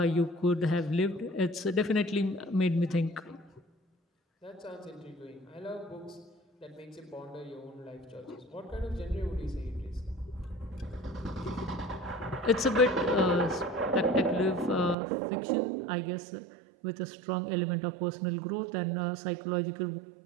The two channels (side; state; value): left; drops out; at 15.0 s